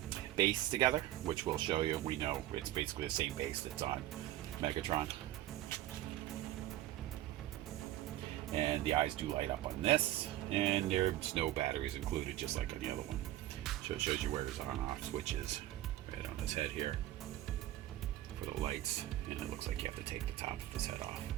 base together, which we'll show you. We know it's basically the same base that's on Megatron. And the eyes do light up on this, and there's no batteries included, just like on the other one. So it shows you where his on-off switch is, right on his head here for the lights, and it looks like you have to take the top of his head off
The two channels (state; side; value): quieter; left; 14.6 dB